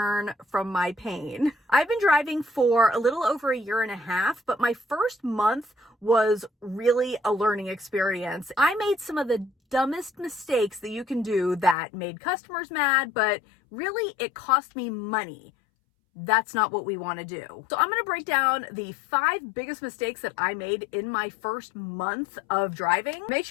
from my pain. I've been driving for a little over a year and a half, but my first month was really a learning experience. I made some of the dumbest mistakes that you can do that made customers mad, but really it cost me money. That's not what we want to do. So I'm going to break down the 5 biggest mistakes that I made in my first month of driving. Make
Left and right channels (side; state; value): right; drops out; at 11.8 s